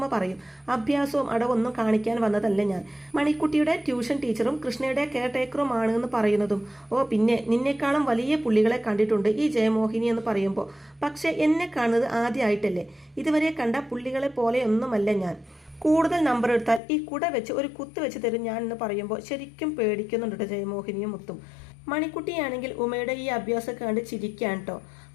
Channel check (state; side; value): drops out; right; at 16.8 s